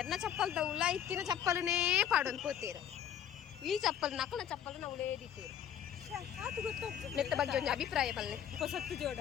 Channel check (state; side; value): quieter; right; 9.6 dB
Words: ಚಪ್ಪಲ್ದ ಉಲ ಇತ್ತಿನ ಚಪ್ಪಲನೇ ಪಾಡೊಂದು ಪೋತೀರ ಈ ಚಪ್ಪಲ್ ನಕಲ ಚಪ್ಪಲ್ ನಾವು ಉಳೇದಿತ್ತೀರು ಮೆತ್ತ ಬಗ್ಗೆ ಒಂದು ಅಭಿಪ್ರಾಯ ಬಲ್ಲೆ